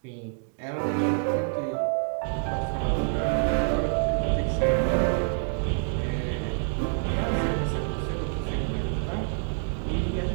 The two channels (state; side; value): silent; left; 60 dB below the other